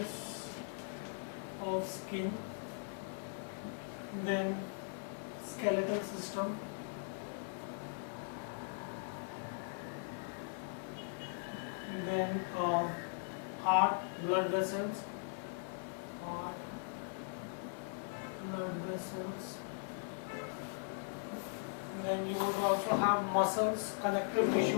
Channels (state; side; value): silent; right; 51 dB below the other